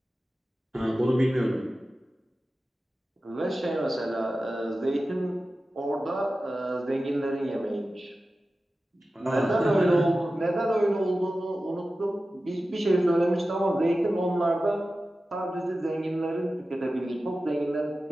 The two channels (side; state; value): both; normal; correlation 0.94